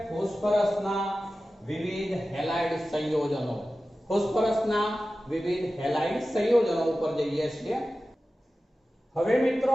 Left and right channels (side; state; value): both; normal; correlation 0.95